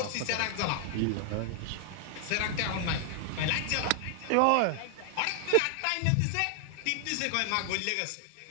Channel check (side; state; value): both; different; correlation 0.00